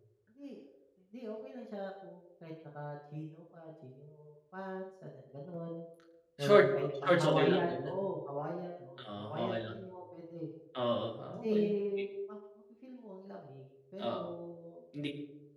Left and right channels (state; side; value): identical; both; correlation 1.00